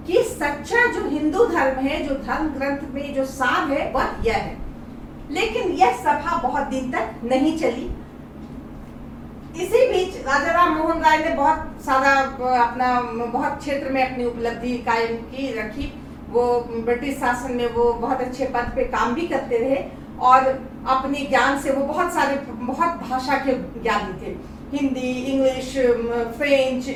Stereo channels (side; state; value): both; identical; correlation 1.00